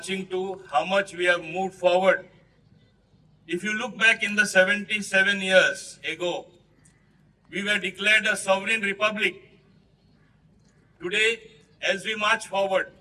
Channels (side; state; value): both; identical; correlation 1.00